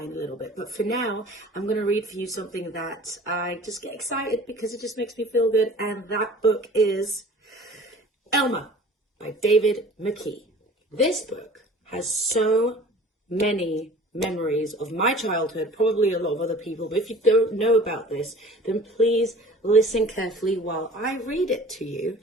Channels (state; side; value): normal; both; correlation 0.45